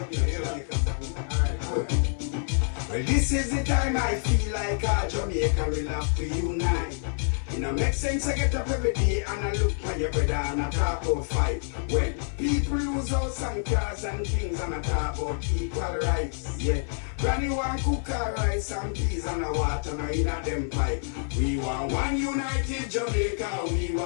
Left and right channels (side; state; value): right; silent; 60 dB below the other